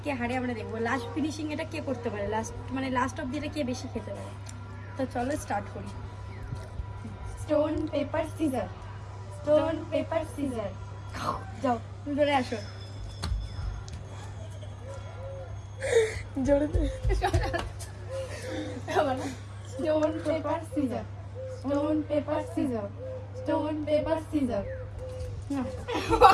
কে হারে আমরা দেখবো। লাস্ট ফিনিশিং এটা কে করতে পারে, লাস্ট অব্দি এটা কে বেশি খেতে পারে। তো চলো স্টার্ট করি। Stone paper scissor, stone paper scissor. যাও ধরে আসো। জোরে stone paper scissor, stone paper scissor, stone paper scissor.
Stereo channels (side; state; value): both; identical; correlation 1.00